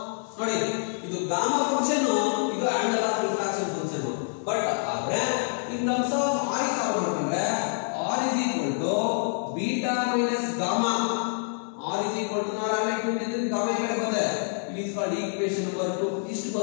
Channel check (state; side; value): silent; right; digital silence